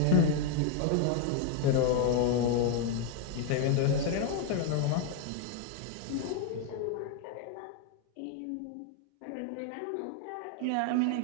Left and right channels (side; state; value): both; different; correlation 0.01